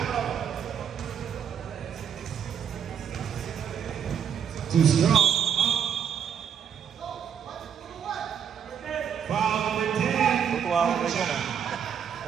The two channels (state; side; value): quieter; left; 8.0 dB